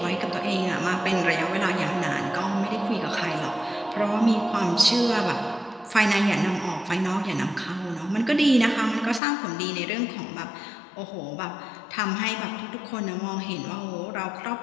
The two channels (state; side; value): drops out; right; at 9.2 s